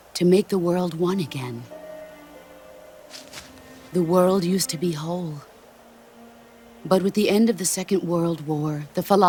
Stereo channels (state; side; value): identical; both; correlation 1.00